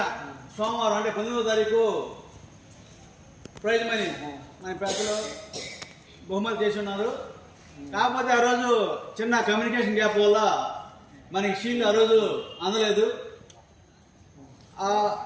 సోమవారం అంటే 19వ తారీఖు ప్రైజ్ మనీ మన పెద్దలు బహుమతి చేసి ఉన్నారు. కాకపోతే ఆ రోజు చిన్న కమ్యూనికేషన్ గ్యాప్ వల్ల మనకి షీల్డ్ ఆ రోజు అందలేదు. ఆ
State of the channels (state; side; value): identical; both; correlation 1.00